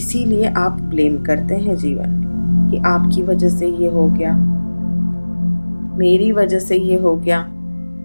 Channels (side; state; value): both; inverted; correlation -1.00